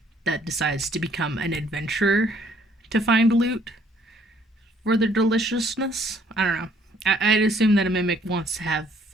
that decides to become an adventurer to find loot for their deliciousness. I don't know. I'd assume that a mimic wants to have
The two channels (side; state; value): both; normal; correlation 0.63